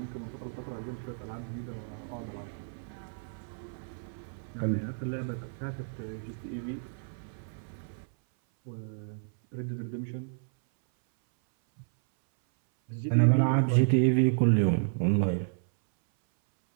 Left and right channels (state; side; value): silent; left; 57 dB below the other